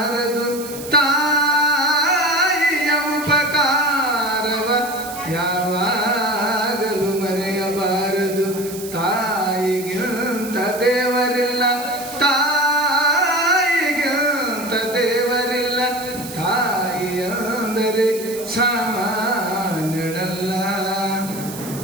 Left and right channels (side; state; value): right; noise; hiss, 13 dB below the sound